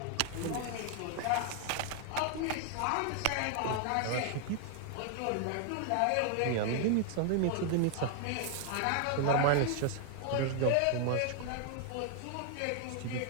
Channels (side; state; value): both; different; correlation 0.00